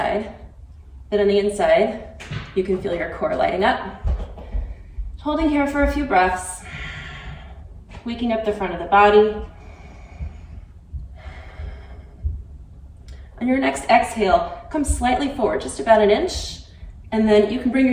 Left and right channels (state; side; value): identical; both; correlation 1.00